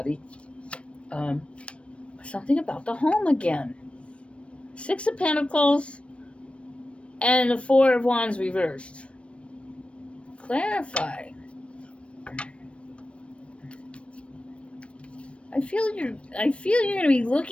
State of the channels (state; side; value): late; right; 0.061 ms